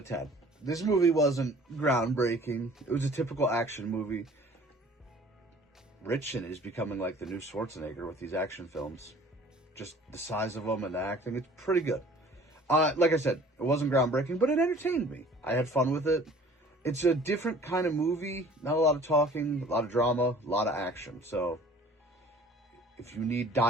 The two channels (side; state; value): both; normal; correlation 0.50